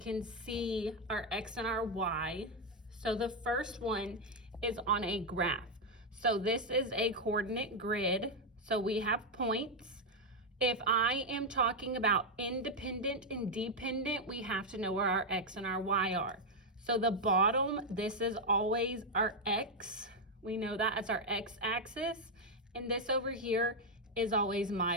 see our x and our y. So the first one is on a graph. So this is a coordinate grid. So we have points. If I am talking about independent and dependent, we have to know where our x and our y are. So the bottom, this is always our x. We know that as our x-axis. And this over here is always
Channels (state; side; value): normal; both; correlation 0.01